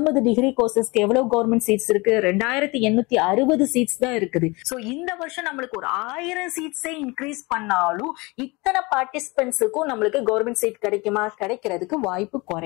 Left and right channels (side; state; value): right; quieter; 25.3 dB